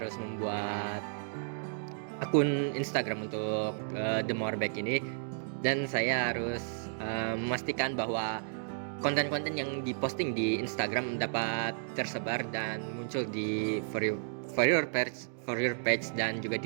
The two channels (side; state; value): left; silent; digital silence